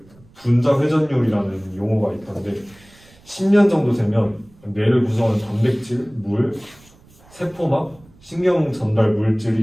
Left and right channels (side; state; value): right; noise; rumble, 27 dB below the sound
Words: 분자 회전율이라는 용어가 있던데, 10년 정도 되면 뇌를 구성하는 단백질, 물, 세포막, 신경 전달